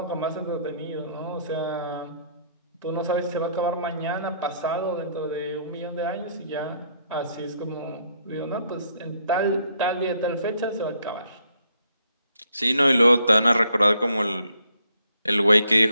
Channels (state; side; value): inverted; both; correlation -0.70